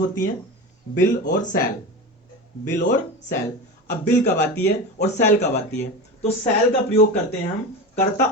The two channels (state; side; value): normal; both; correlation 0.26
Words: हैं, बिल और सेल। बिल और सेल। अब बिल कब आती है और सेल कब आती है? तो सेल का प्रयोग करते हैं हम कर्ता